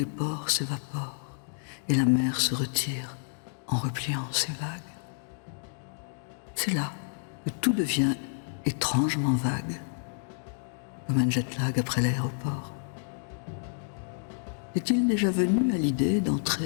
ports s'évaporent et la mer se retire en repliant ses vagues. C'est là que tout devient étrangement vague, comme un jet lag après l'aéroport. Est-il déjà venu à l'idée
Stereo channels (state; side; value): silent; right; digital silence